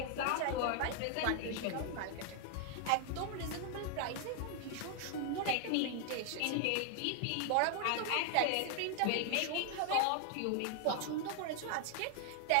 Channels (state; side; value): different; both; correlation 0.00